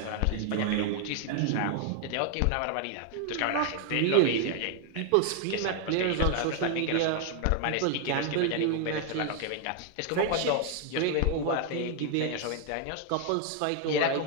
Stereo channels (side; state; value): both; different; correlation 0.00